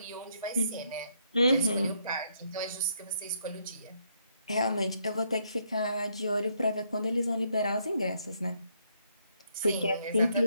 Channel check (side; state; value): both; inverted; correlation -0.74